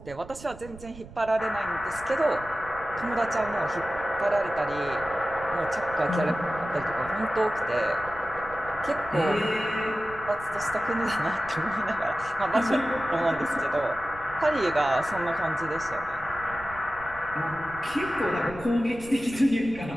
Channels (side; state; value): right; noise; rumble, 17 dB below the sound